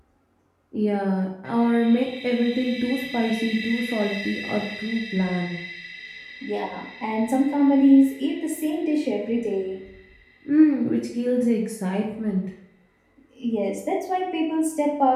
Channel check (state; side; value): identical; both; correlation 1.00